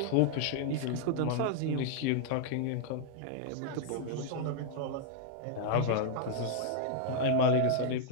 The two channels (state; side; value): different; both; correlation -0.01